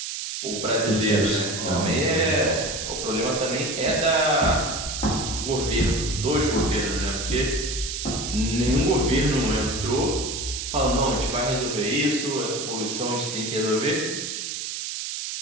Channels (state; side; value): noise; right; hiss, 5 dB below the sound